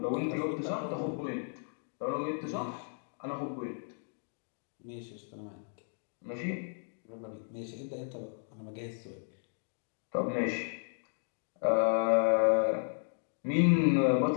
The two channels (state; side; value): silent; right; digital silence